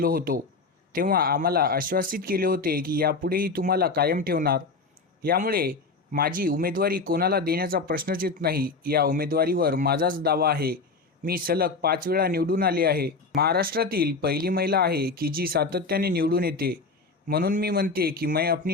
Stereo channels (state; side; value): quieter; right; 4.0 dB